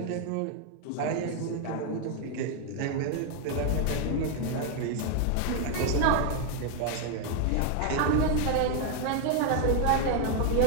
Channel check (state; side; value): different; both; correlation 0.01